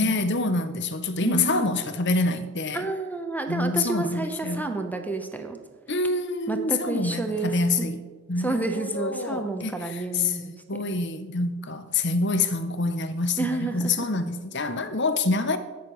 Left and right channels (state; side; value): normal; both; correlation 0.41